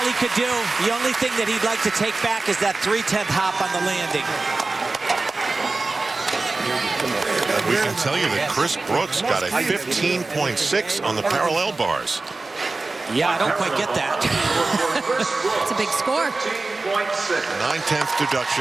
he could do. The only thing that he'd like to take back is that 3/10 hop on the landing. We can tell you that Chris Brooks got a 15.6 on the parallel bars. Yeah, I don't quite get that. It's a big score. 9/10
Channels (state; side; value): quieter; left; 3.5 dB